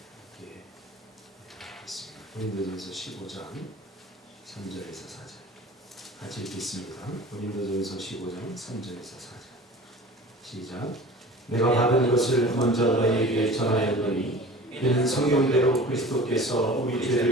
읽겠습니다. 고린도전서 15장 3절에서 4절. 같이 읽겠습니다. 고린도전서 15장 3절에서 4절. 시작. 내가 받은 것을 먼저 너희에게 전하였노니 이는 성경대로 그리스도께서 우리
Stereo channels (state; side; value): normal; both; correlation 0.41